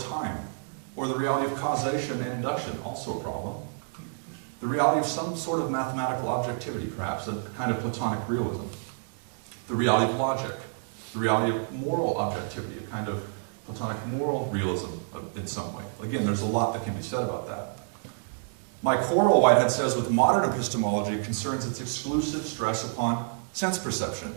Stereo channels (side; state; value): left; silent; digital silence